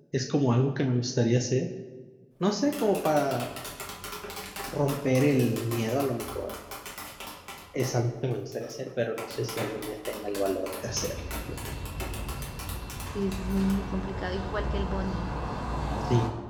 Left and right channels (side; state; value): both; identical; correlation 1.00